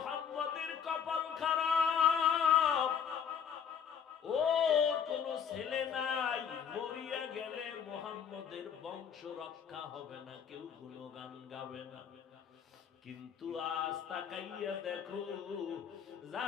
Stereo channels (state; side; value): quieter; right; 7.7 dB